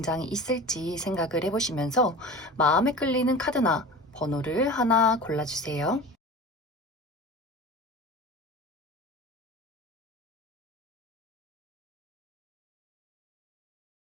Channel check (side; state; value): both; normal; correlation 0.34